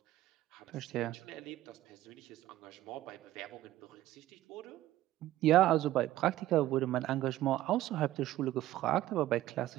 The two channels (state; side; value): quieter; left; 14.8 dB